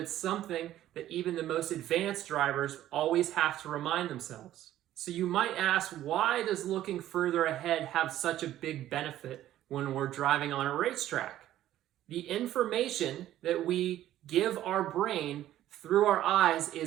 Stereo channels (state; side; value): quieter; left; 13.1 dB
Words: something that even the most advanced drivers always have to remind themselves. So you might ask, why does looking further ahead have such a big benefit when we're driving on a racetrack? The information that we give our brain through our eyes